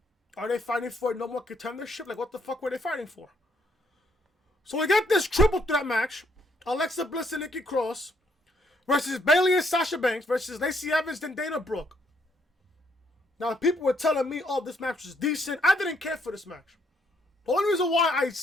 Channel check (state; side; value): normal; both; correlation 0.71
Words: Are they fighting for no more contendership? Like, what the fuck were they fighting for? So we got this triple threat match. Alexa Bliss and Nikki Cross versus Bayley and Sasha Banks versus Lacey Evans and Dana Brooke. Now, people were telling me, oh, this match was decent. I didn't care for this match. The only reason why